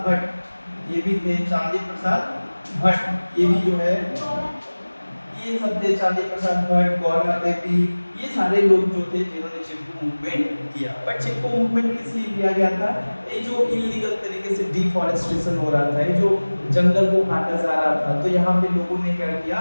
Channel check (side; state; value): both; inverted; correlation -1.00